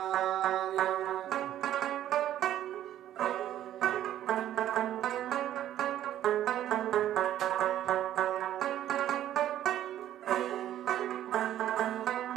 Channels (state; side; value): quieter; left; 12.0 dB